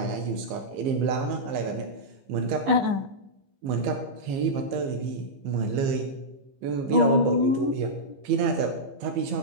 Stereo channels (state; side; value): late; left; 15 ms